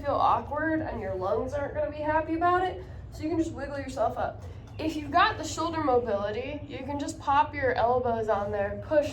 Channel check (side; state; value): both; identical; correlation 1.00